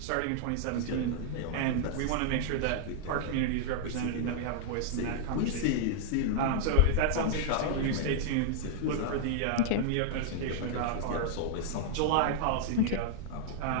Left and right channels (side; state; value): both; different; correlation -0.01